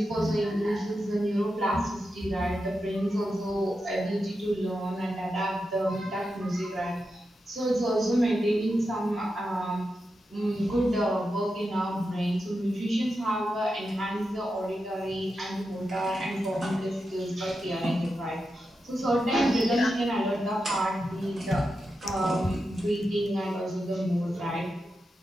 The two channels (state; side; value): normal; both; correlation 0.88